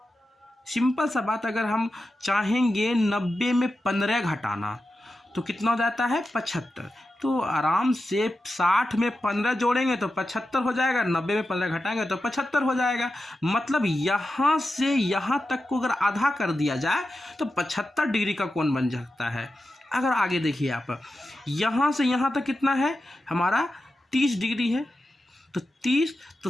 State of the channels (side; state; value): both; normal; correlation 0.91